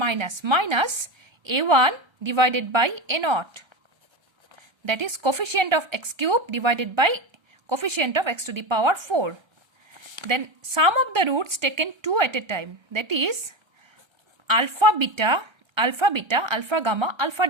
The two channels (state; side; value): late; left; 1.3 ms